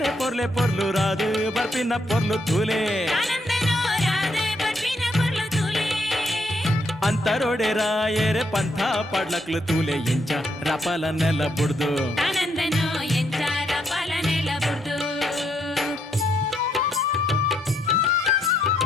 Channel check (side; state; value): both; normal; correlation 0.75